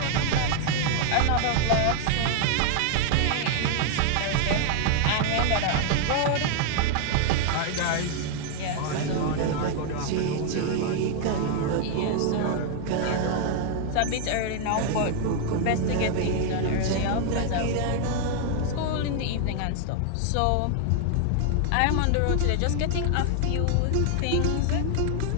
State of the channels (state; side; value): different; both; correlation 0.00